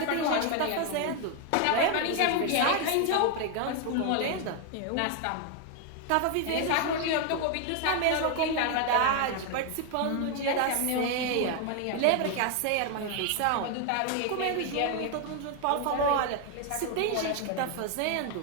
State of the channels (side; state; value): both; different; correlation 0.00